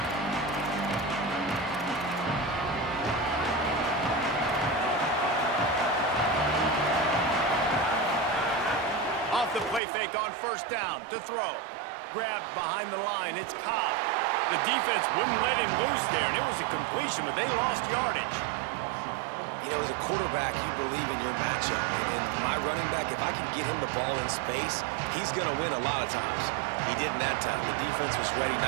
Off the play fake on first down to throw. Grabbed behind the line. It's Cobb. The defense wouldn't let him loose there, and it was a completion, but they lost yardage. You know, as a quarterback, you believe in your matchup. And my running back, if I can get him the ball in space, he's going to win a lot of times. He didn't that time. The defense was ready.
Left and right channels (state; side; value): drops out; left; at 9.8 s